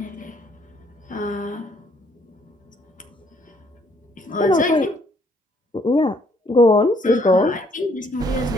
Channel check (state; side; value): normal; both; correlation 0.66